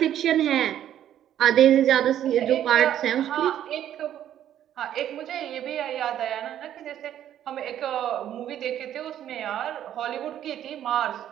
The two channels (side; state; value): left; quieter; 11.0 dB